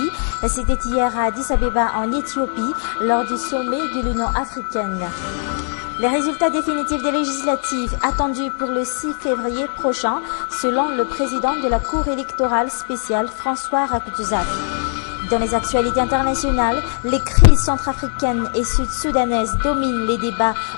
C'était hier à Addis Abeba en Éthiopie lors du sommet de l'Union africaine. Les résultats définitifs des législatives attendus pour le 6 février prochain, selon le président de la Cour électorale spéciale, François Rakhtuzak. Dans les actualités internationales, les crises centrafricaines et sud-soudanaises dominent les débats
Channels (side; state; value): right; silent; digital silence